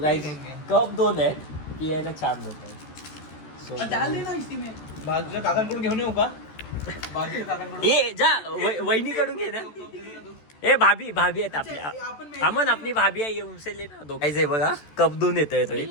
कप 2 आहेत. पियायला 4 होत आहेत. सो डाल देना इसी में. बाजूच्या काकांकडून घेऊन येऊ का. बाजूच्या काकांकडून. ए जा वहिनीकडून घे ना. ए भाभी आहेत आपल्या. अमन आपली भाभी आहे. उनसे ले ना दो. गाईज हे बघा कप 2 येतोय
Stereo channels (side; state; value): right; late; 14 ms